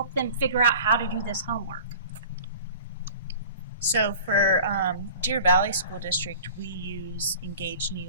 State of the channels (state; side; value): inverted; both; correlation -0.42